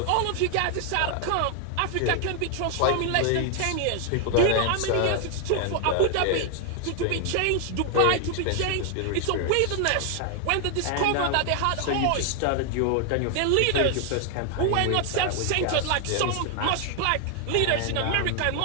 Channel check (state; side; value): different; both; correlation 0.00